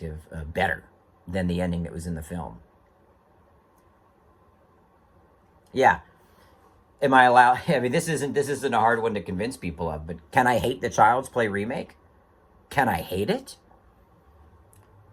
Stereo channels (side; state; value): both; identical; correlation 1.00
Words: better than the ending that was in the film. Yeah. Am I allowed? I mean, this isn't a hard one to convince people of, but can I hate the Child's Play remake? Can I hate it?